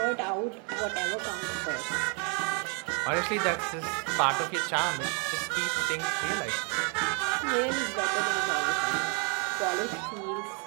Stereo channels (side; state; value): left; quieter; 36.5 dB